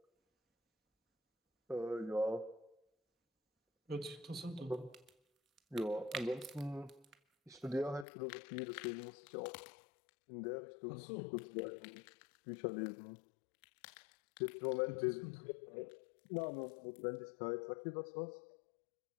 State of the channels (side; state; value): right; drops out; at 8.1 s